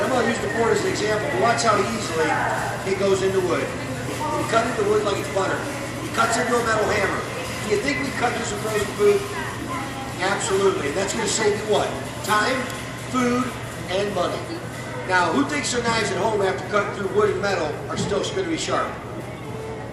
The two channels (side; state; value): both; identical; correlation 1.00